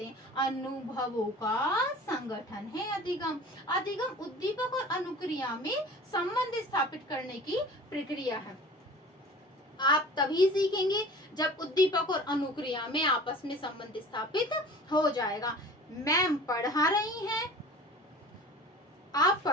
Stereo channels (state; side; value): normal; both; correlation 0.42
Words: हैं। अनुभवों का संगठन है अधिगम। अधिगम उद्दीपक और अनुक्रिया में संबंध स्थापित करने की प्रक्रिया है। आप तभी सीखेंगे जब उद्दीपक और अनुक्रिया में आपस में संबंध स्थापित हो जाएगा। मैम पढ़ा रही हैं, आप